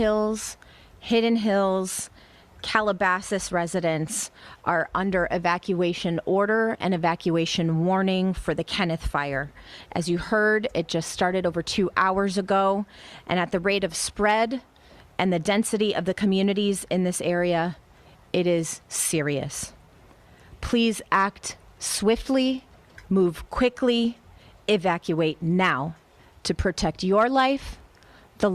Hidden Hills, Calabasas residents are under evacuation order and evacuation warning for the Kenneth fire. As you heard, it just started over 2 hours ago, and at the rate of spread and the density of the communities in this area, it is serious. Please act swiftly, move quickly, evacuate now to protect your life, the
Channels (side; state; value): both; identical; correlation 1.00